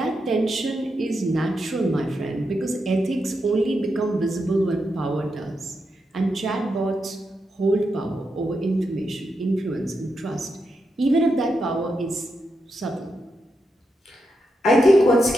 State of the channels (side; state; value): both; normal; correlation 0.85